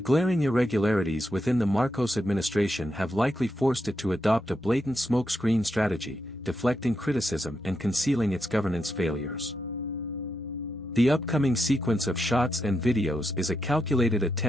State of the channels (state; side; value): normal; both; correlation 0.84